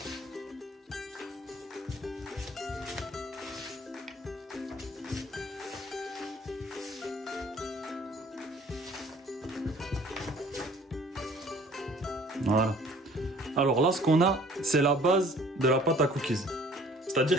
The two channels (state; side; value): normal; both; correlation 0.53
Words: Voilà. Alors là, ce qu'on a, c'est la base de la pâte à cookies.